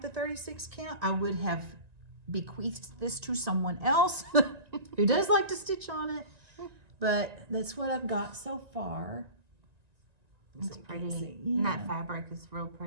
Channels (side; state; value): left; late; 1.9 ms